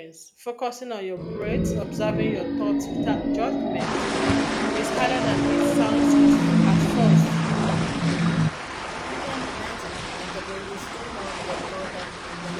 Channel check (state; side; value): identical; both; correlation 1.00